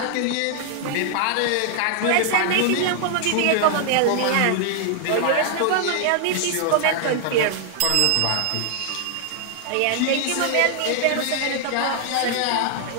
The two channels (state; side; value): different; both; correlation 0.00